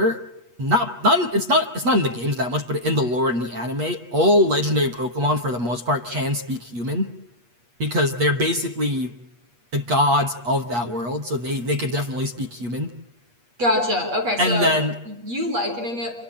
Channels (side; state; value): left; late; 8.4 ms